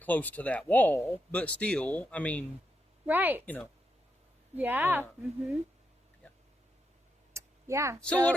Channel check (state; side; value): normal; both; correlation 0.83